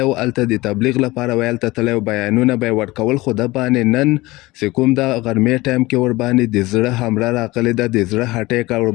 و، هلته د تبلیغ لپاره وی هلته تللی و، بیانونه به یې ورکول، خو ده باندې نن چې کوم د غرمې ټایم کې ور باندې د زړه حمله راغلې ده، د زړه اټیک ور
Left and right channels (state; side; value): quieter; right; 20.4 dB